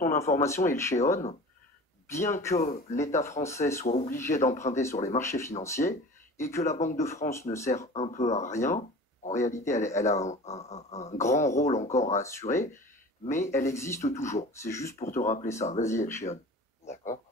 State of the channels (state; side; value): normal; both; correlation 0.39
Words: information, Elchéon, bien que l'État français soit obligé d'emprunter sur les marchés financiers et que la Banque de France ne sert un peu à rien, en réalité elle a un grand rôle encore à assurer, mais elle existe toujours. C'est juste pour te rappeler ça. Vas-y Elchéon. D'accord.